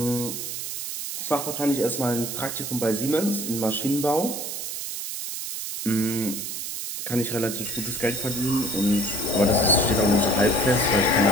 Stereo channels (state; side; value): noise; right; hiss, 5 dB below the sound